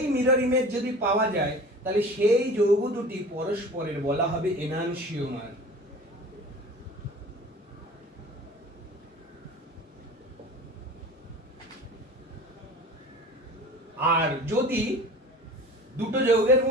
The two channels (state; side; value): normal; both; correlation 0.40